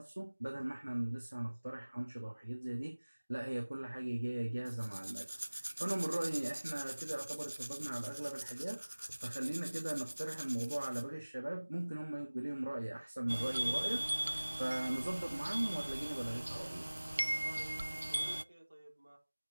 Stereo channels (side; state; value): both; inverted; correlation -1.00